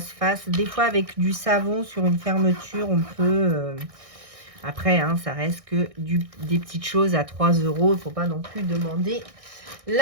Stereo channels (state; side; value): late; left; 1.6 ms